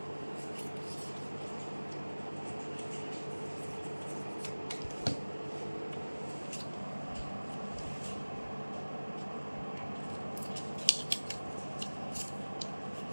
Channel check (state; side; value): inverted; both; correlation -1.00